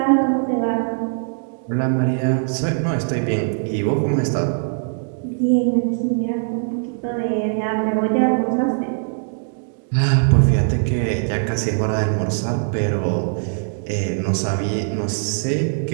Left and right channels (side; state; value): left; silent; digital silence